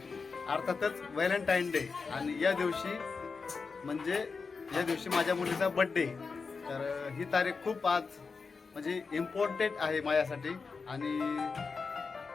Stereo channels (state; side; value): quieter; right; 4.8 dB